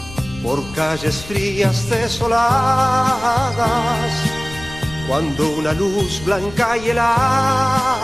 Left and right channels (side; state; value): left; noise; rumble, 16 dB below the sound